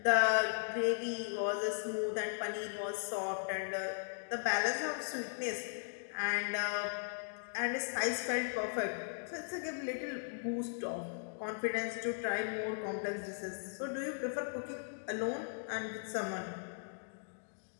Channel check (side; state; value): right; silent; digital silence